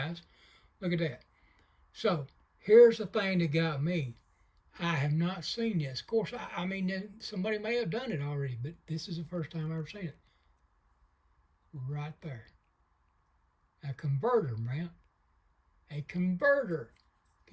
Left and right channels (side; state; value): both; identical; correlation 1.00